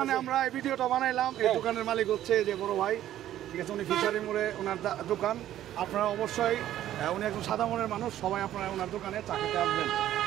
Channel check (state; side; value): quieter; left; 12.4 dB